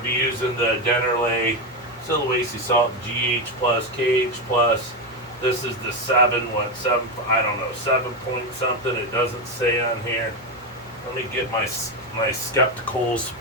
be using the Dennerley Sulawesi Salt GH plus KH plus. This is the 7, I don't know, 7 point something. It doesn't say on here. Let me get my spectacles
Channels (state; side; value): normal; both; correlation 0.11